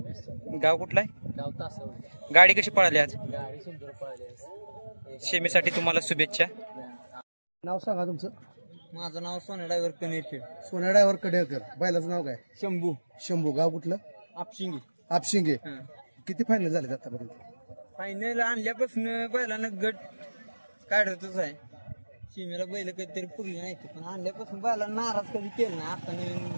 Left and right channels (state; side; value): inverted; both; correlation -1.00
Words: गाव कुठलं आहे? गाव तासवडे. गाडी कशी पळाली आज? गाडी सुंदर पळाली. सेमीसाठी तुम्हाला शुभेच्छा. नाव सांगा तुमचं? माझं नाव सोन्या ड्रायव्हर कनेरखेड. सोन्या ड्रायव्हर कडेकर. बैलाचं नाव काय? शंभू. गाव कुठलं? आपशिंगे. किती फायनल झाले आतापर्यंत? फायनल आणल्यापासून बैलानं गट काढतच आहे. सीमेला बैल कधीतरी पुरली नाही, पण आणल्यापासून बैलानं नाराज कधी केलं नाही. आता